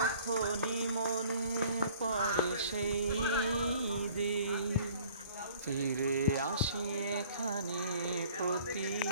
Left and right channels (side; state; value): both; inverted; correlation -0.54